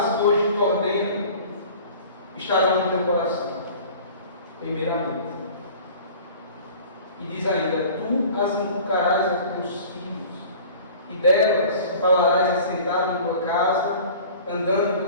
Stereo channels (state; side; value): inverted; both; correlation -0.44